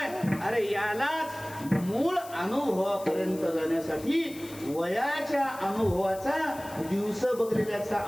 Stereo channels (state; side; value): noise; left; hiss, 18 dB below the sound